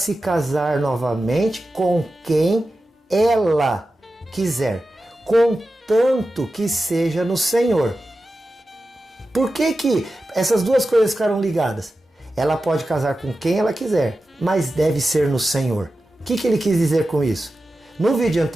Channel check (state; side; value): normal; both; correlation 0.93